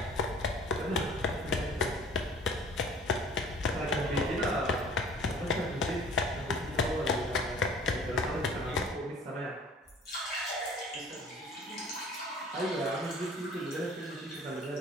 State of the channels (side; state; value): both; normal; correlation 0.49